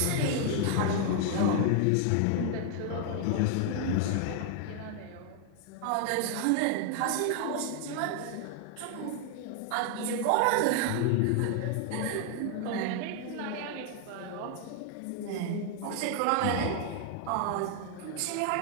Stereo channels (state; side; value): different; both; correlation 0.00